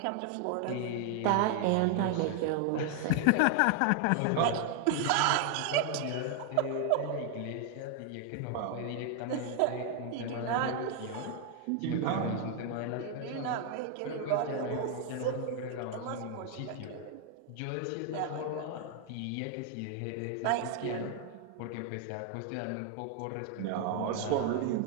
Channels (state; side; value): different; both; correlation 0.00